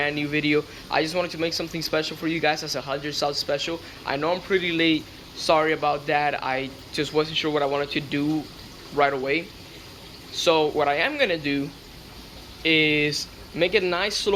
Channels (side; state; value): both; identical; correlation 1.00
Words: new video. I just wanted to make something special for you guys as a 100 sub special. I know I'm pretty late, sorry about that. I just wasn't sure what I wanted to do right away. So what I am gonna do is make a nice